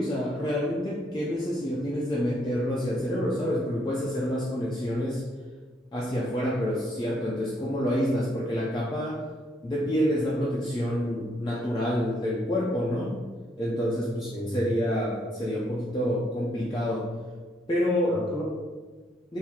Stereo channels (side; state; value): both; normal; correlation 0.71